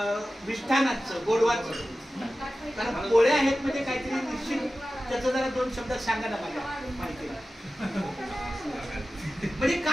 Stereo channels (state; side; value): normal; both; correlation 0.95